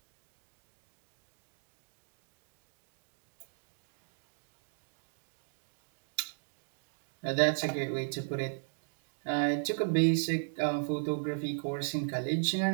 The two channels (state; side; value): silent; left; digital silence